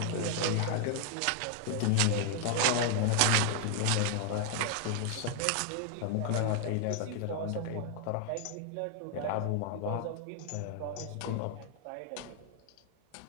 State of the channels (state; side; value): different; both; correlation 0.00